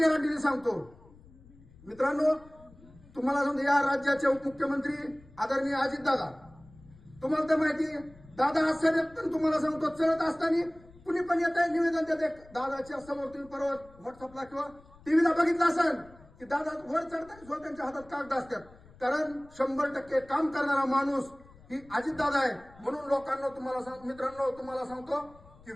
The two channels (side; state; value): left; noise; rumble, 24 dB below the sound